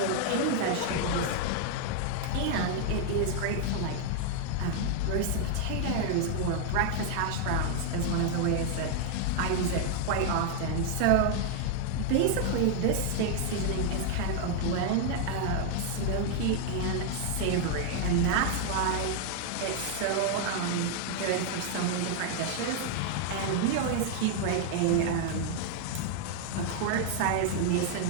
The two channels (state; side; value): different; both; correlation 0.00